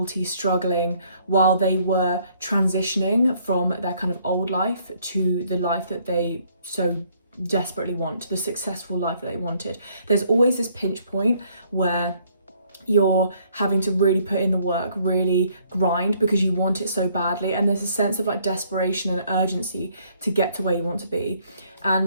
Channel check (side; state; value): both; inverted; correlation -0.65